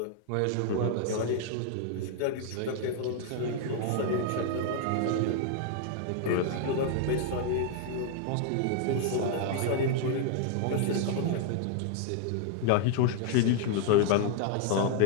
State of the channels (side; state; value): both; different; correlation 0.00